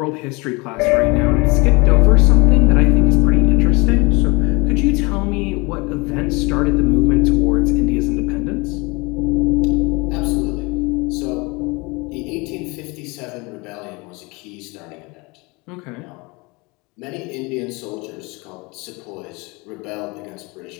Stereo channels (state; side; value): quieter; right; 26.5 dB